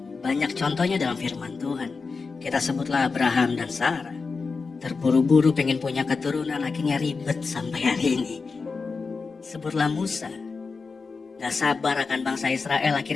Banyak contohnya dalam firman Tuhan. Kita sebutlah Abraham dan Sarah. Terburu-buru pengen punya keturunan, akhirnya ribet sampai hari ini. Sebutlah Musa. Gak sabar akan bangsa Israel,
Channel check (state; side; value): quieter; right; 4.6 dB